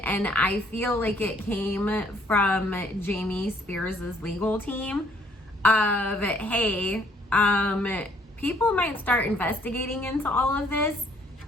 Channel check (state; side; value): normal; both; correlation 0.64